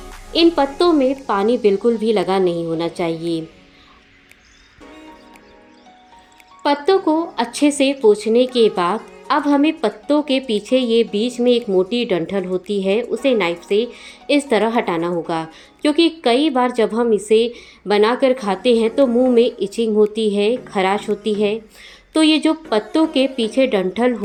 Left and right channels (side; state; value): both; identical; correlation 1.00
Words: इन पत्तों में पानी बिल्कुल भी लगा नहीं होना चाहिए। पत्तों को अच्छे से पोंछने के बाद अब हमें पत्तों के पीछे ये बीच में एक मोटी डंठल होती है, उसे नाइफ से इस तरह हटाना होगा, क्योंकि कई बार जब हम इसे बनाकर खाते हैं तो मुंह में इचिंग होती है, खराश होती है। तो ये जो पत्तों के पीछे डंठल